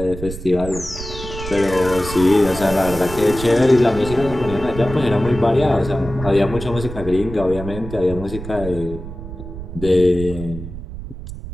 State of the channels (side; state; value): right; noise; rumble, 10 dB below the sound